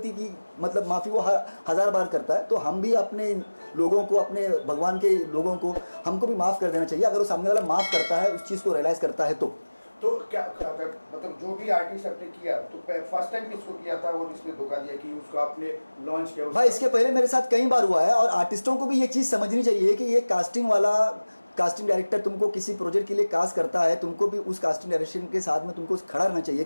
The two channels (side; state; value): both; inverted; correlation -1.00